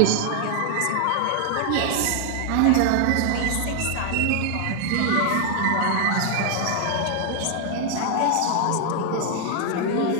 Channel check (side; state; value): both; different; correlation 0.00